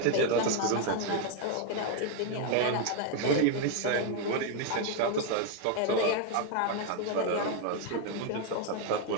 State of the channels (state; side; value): different; both; correlation 0.01